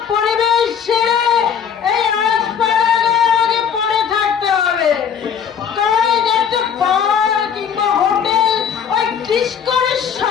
পরিবেশ ছেড়ে এই আগে পড়ে থাকতে হবে। তাই একটা বার কিংবা হোটেল ওই ডিস্কোর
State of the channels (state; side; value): quieter; right; 7.7 dB